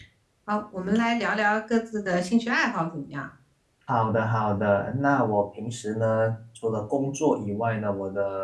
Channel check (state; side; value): identical; both; correlation 1.00